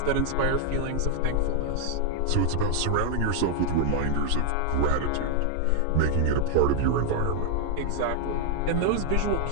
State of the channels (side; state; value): both; different; correlation 0.00